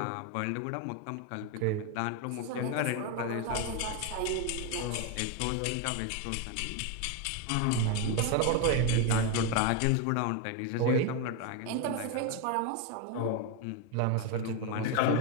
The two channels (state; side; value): different; both; correlation 0.02